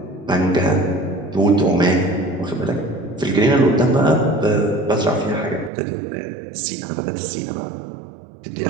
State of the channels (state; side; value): drops out; left; at 5.7 s